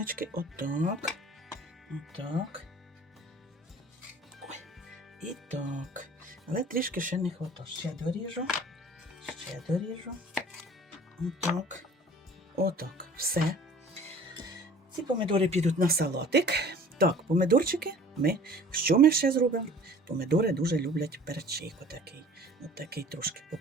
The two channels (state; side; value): normal; both; correlation 0.48